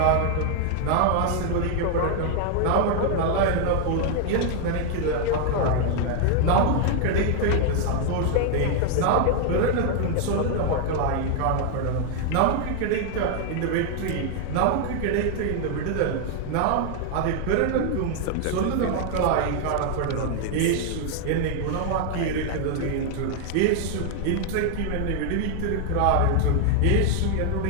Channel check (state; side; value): different; both; correlation 0.00